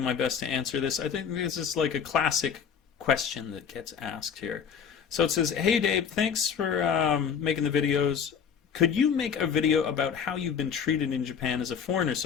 best to answer this. I think this is like a classic question that gets asked here. So it says, "Hey Dave, thanks for making the videos. Could you make a video about how you've been treated in Japan as a foreigner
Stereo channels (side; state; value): right; quieter; 7.2 dB